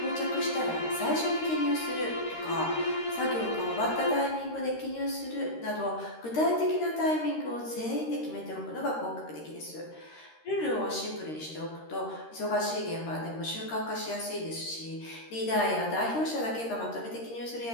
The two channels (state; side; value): late; right; 13 ms